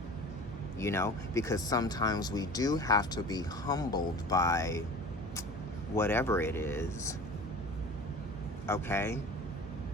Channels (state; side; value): normal; both; correlation 0.39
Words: You know, because sometimes we do have to be humbled by whatever it is, okay?